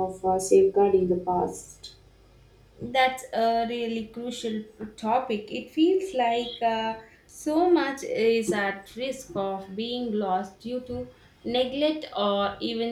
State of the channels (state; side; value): identical; both; correlation 1.00